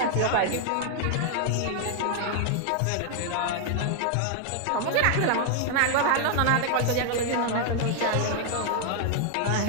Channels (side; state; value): both; different; correlation 0.00